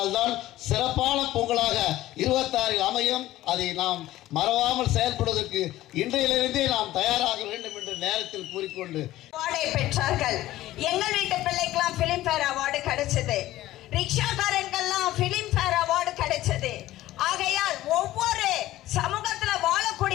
தான் சிறப்பான பொங்கலாக 26 அமையும். அதை நாம் மறவாமல் செயல்படுவதற்கு இன்றையிலிருந்தே நாம் தயாராக வேண்டும் என்று நேரத்தில் கூறிக்கொண்டு அவார்டை பெற்றார்கள். எங்கள் வீட்டு பிள்ளைக்கெல்லாம் பிலிம்பேர் அவார்டு கிடைச்சது, ரிக்ஷாக்காரங்கெல்லாம் பிலிம்பேர் அவார்டு கிடைச்சது. ஆகையால் ஒவ்வொரு சமூகத்தில்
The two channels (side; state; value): right; quieter; 15.4 dB